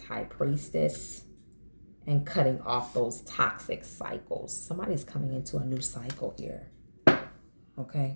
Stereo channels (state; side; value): inverted; both; correlation -1.00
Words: High Priestess, and cutting off those toxic cycles. Somebody's coming into a new cycle here.